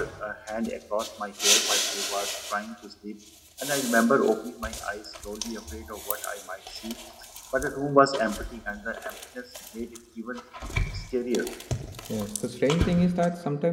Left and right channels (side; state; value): both; identical; correlation 1.00